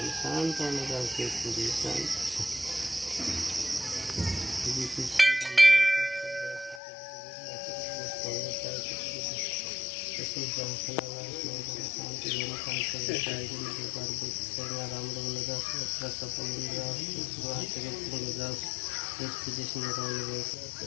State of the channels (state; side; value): drops out; right; at 6.8 s